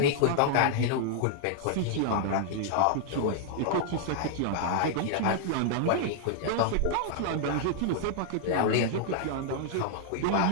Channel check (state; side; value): different; both; correlation -0.01